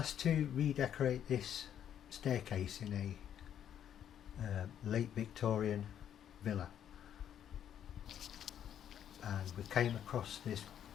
to redecorate this staircase in a late Victorian villa, and we came across this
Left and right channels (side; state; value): right; quieter; 9.7 dB